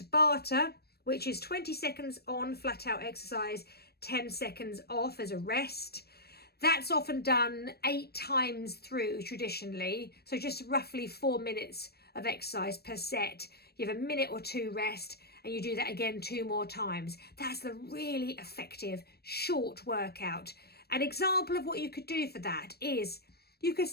which is 20 seconds on flat out exercise, 10 seconds off as a rest. That's often done 8 times through traditionally. So just roughly 4 minutes of exercise per set. You have a minute or 2 rest and you do that again 2 more times. That's the really effective short workout. An example of what you could do for that is you could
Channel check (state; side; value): late; right; 0.47 ms